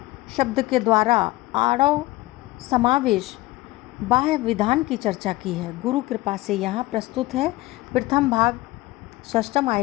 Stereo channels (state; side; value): quieter; right; 18.9 dB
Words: शब्द के द्वारा आड़व समावेश बाह्य विधान की चर्चा की है। गुरु कृपा से यहाँ प्रस्तुत है। प्रथम भाग षष्ठम